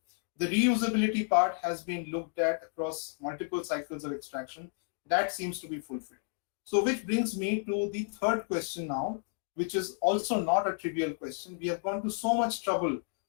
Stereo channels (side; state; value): right; quieter; 39.5 dB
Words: The reusability part has been looked at across multiple cycles of extraction. That seems to be fulfilled. So which brings me to the third question now, which is also not a trivial question. We have gone to so much trouble